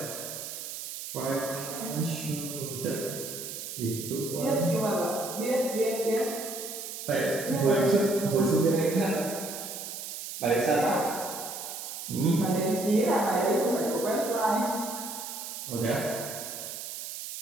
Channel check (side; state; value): right; noise; hiss, 8 dB below the sound